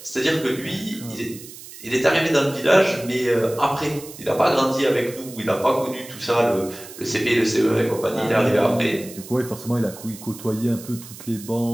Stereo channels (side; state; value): right; noise; hiss, 16 dB below the sound